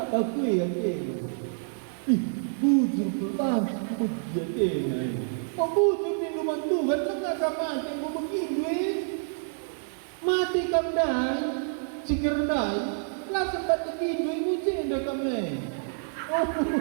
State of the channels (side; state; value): left; silent; digital silence